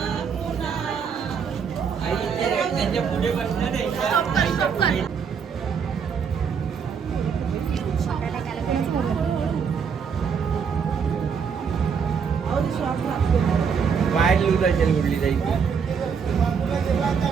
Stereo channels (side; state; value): left; quieter; 6.5 dB